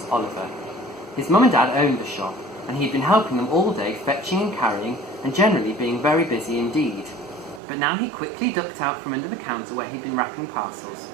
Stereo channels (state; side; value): drops out; left; at 7.6 s